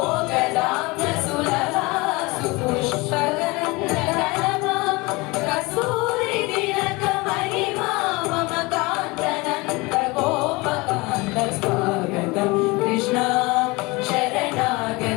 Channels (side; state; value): right; quieter; 24.4 dB